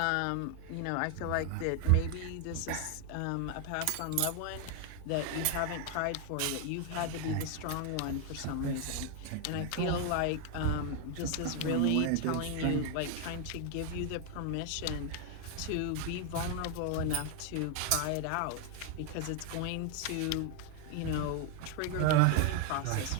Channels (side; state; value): both; different; correlation 0.01